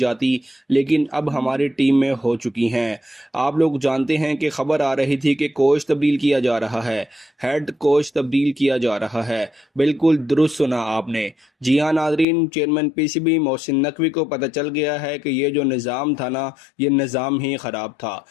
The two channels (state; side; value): drops out; right; at 12.2 s